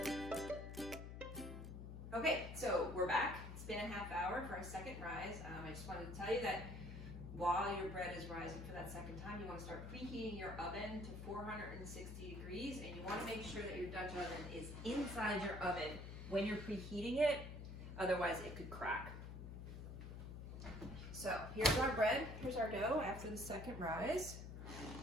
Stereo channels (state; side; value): noise; left; hum, 8 dB below the sound